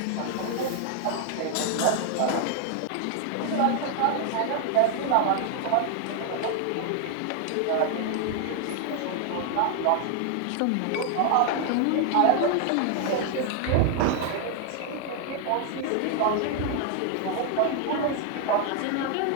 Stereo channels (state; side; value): different; both; correlation 0.00